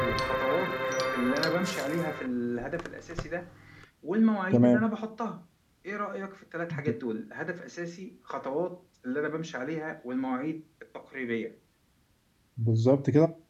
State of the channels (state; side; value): identical; both; correlation 1.00